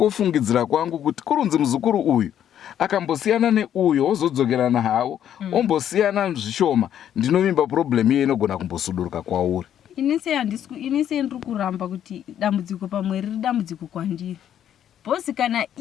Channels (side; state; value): right; quieter; 10.2 dB